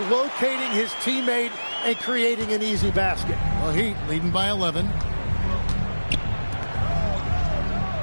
locating his teammate and creating an easy basket. The Heat leading by 11.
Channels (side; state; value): both; inverted; correlation -1.00